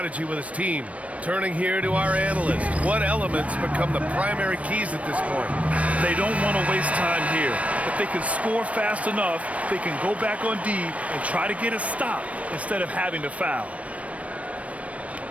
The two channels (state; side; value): late; left; 0.065 ms